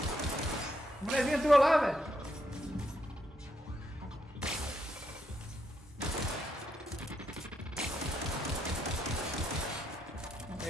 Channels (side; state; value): both; normal; correlation 0.79